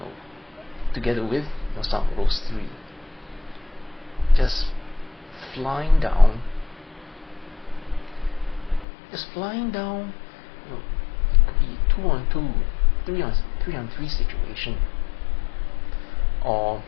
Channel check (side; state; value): right; drops out; at 8.8 s